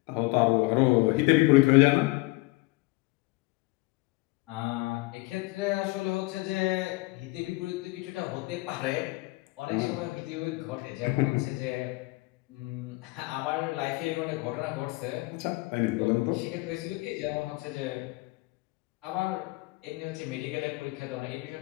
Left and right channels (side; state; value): right; quieter; 23.6 dB